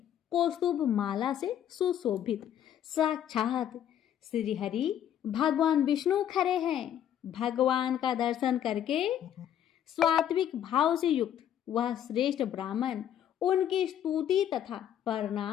कौस्तुभ माला से सुशोभित साक्षात श्रीहरि भगवान विष्णु खड़े हैं। भगवान का दर्शन करके स्वात्विक भाव से युक्त वह श्रेष्ठ ब्राह्मण उनकी स्तुति तथा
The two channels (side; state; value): right; quieter; 10.3 dB